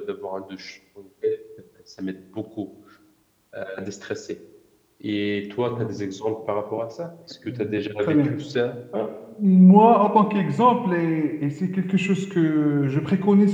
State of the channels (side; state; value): both; identical; correlation 1.00